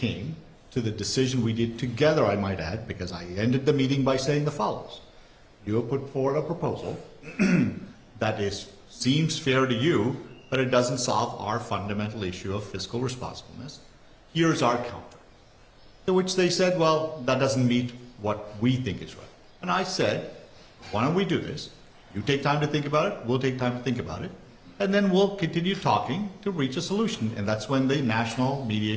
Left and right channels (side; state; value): both; identical; correlation 1.00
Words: to the decision we did together, I might add, because I ended the meeting by saying the follows. You have put forward a proposal that seems fair to you, but it doesn't solve our fundamental issue of fiscal responsibleness. Here's our counter. To which they said, well, that doesn't meet what we think is right. And I said, why don't we do this? You take time to think about it, we'll take time to think about it, and then we'll continue talking to reach a solution. And that's when the National